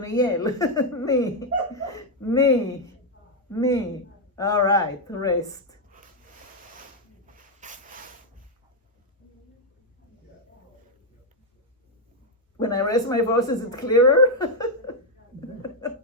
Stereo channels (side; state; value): both; normal; correlation 0.01